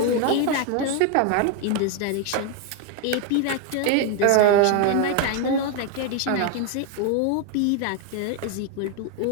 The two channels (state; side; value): different; both; correlation 0.01